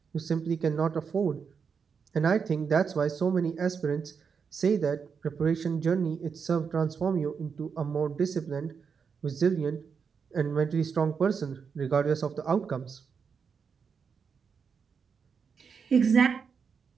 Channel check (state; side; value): quieter; left; 6.1 dB